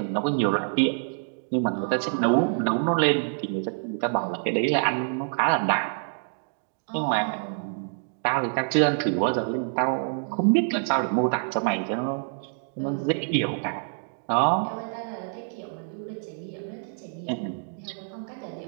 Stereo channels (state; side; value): silent; left; digital silence